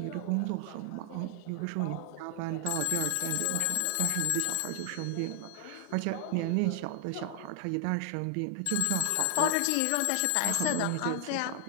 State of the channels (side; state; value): both; different; correlation 0.00